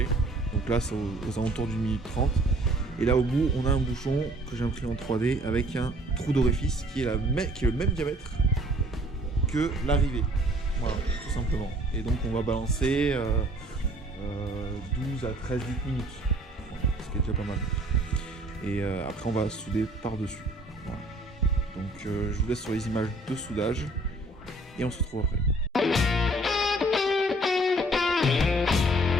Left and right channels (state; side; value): normal; both; correlation 0.57